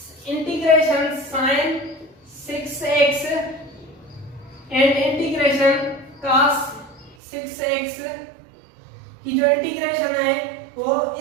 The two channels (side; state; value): left; drops out; at 7.2 s